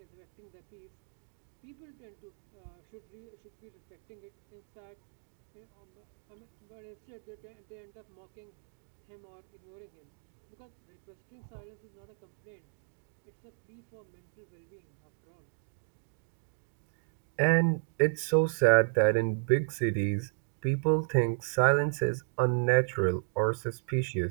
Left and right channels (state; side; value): silent; left; 55 dB below the other